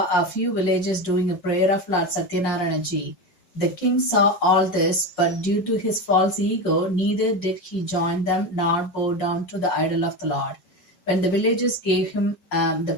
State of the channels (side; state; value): right; late; 5.5 ms